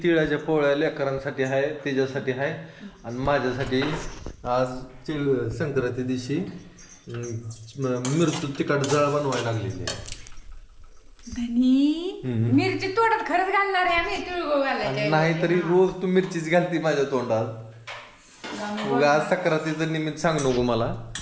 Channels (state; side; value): identical; both; correlation 1.00